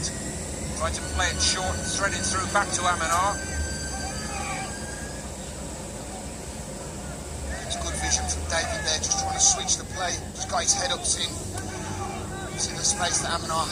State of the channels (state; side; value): identical; both; correlation 1.00